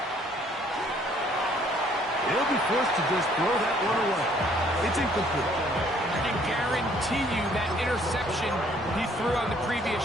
He'll be forced to just throw that one away. It's incomplete. I can guarantee you that interception he threw on the previous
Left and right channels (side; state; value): both; normal; correlation 0.62